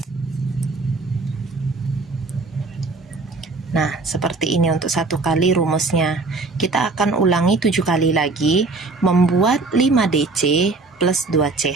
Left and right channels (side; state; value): left; quieter; 3.6 dB